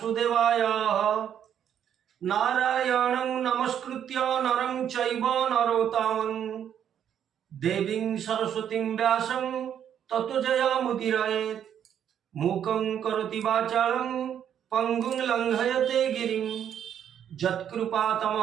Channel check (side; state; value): left; quieter; 9.3 dB